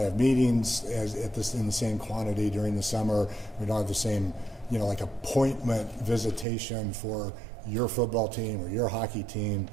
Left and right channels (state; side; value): drops out; left; at 6.5 s